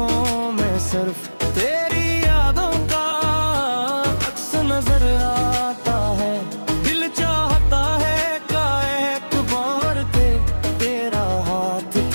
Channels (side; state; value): both; inverted; correlation -1.00